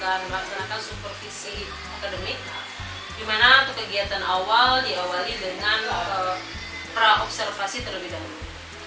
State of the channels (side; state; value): both; identical; correlation 1.00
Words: melaksanakan supervisi akademik, di mana untuk kegiatan awal diawali dengan pra-observasi terlebih dahulu.